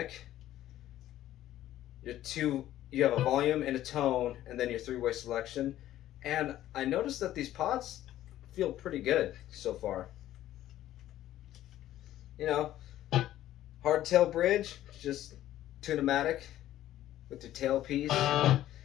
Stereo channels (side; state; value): right; quieter; 13.3 dB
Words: You have a volume and a tone, and then your 3-way selection. And I noticed that these pods feel pretty good so far. You know, hardtail bridge, just tune-o-matic with your tailpiece,